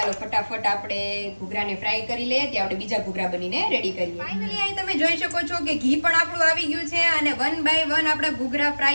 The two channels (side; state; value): both; inverted; correlation -1.00